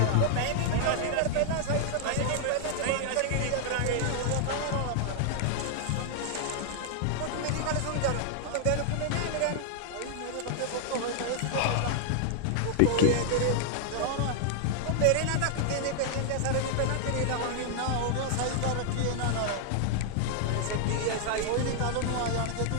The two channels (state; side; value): different; both; correlation 0.00